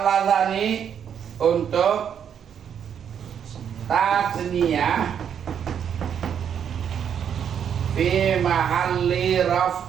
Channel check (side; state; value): left; quieter; 8.3 dB